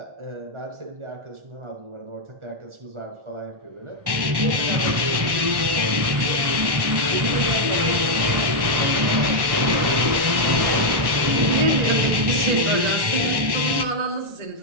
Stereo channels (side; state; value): left; late; 1.1 ms